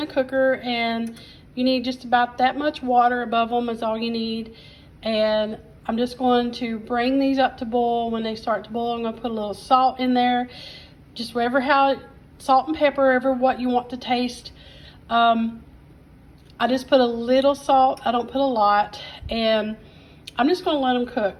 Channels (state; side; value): identical; both; correlation 1.00